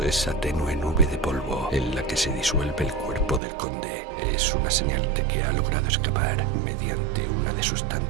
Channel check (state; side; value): drops out; left; at 3.4 s